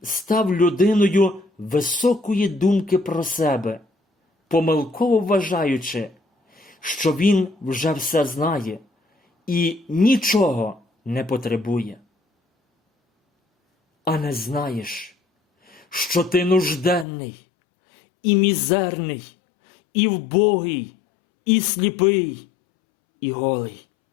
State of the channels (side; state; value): right; drops out; at 17.1 s